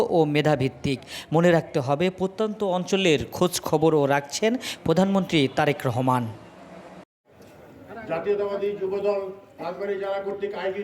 ও মেধাভিত্তিক। মনে রাখতে হবে, প্রত্যন্ত অঞ্চলের খোঁজ খবরও রাখছেন প্রধানমন্ত্রী তারেক রহমান। জাতীয়তাবাদী যুবদল রাজবাড়ী জেলা কর্তৃক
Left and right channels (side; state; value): both; identical; correlation 1.00